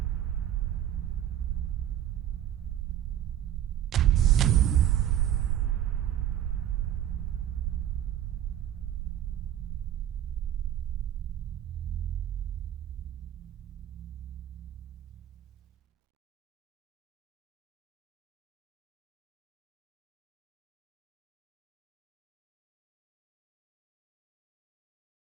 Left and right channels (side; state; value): left; quieter; 11.2 dB